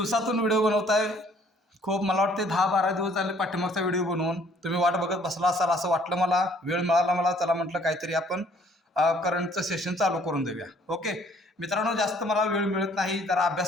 व्हिडिओ बनवताय. मला वाटते 10-12 दिवस झाले पाठीमागचा व्हिडिओ बनवून तुम्ही वाट बघत बसला असाल असं वाटलं मला. वेळ मिळाला मला, चला म्हटलं काहीतरी आपण करंटचं सेशन चालू करून देऊया. ओके मित्रांनो, जास्त मला वेळ मिळत नाही, जरा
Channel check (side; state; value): both; normal; correlation 0.60